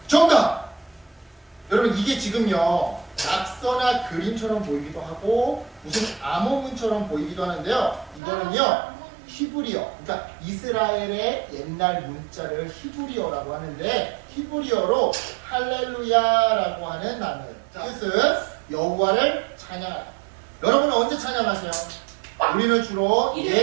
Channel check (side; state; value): left; drops out; at 8.2 s